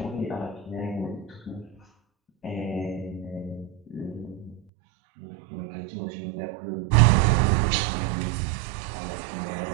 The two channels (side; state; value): left; drops out; at 4.6 s